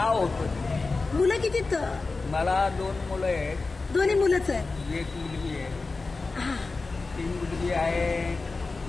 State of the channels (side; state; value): right; quieter; 3.8 dB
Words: होतं. मुलं किती? मला 2 मुलं आहेत. दोन्ही मुलंच आहेत? 1 मुलगी आहे. हा 3 मुलगी आहे